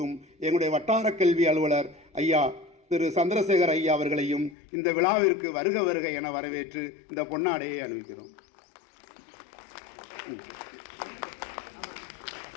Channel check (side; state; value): right; drops out; at 4.5 s